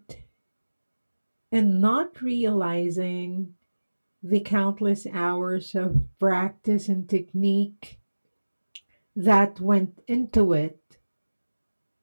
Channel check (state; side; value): inverted; both; correlation -1.00